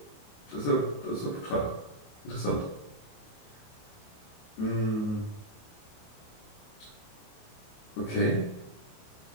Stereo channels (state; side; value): late; right; 28 ms